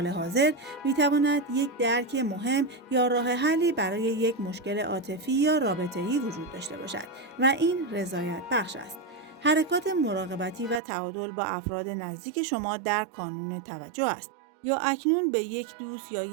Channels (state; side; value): drops out; left; at 10.8 s